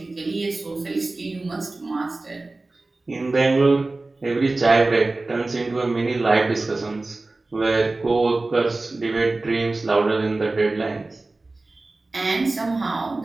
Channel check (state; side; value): quieter; left; 3.2 dB